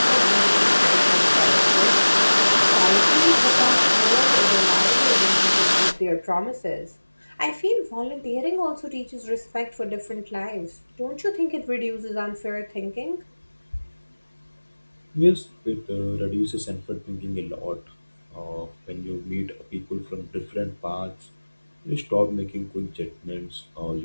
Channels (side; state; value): both; inverted; correlation -1.00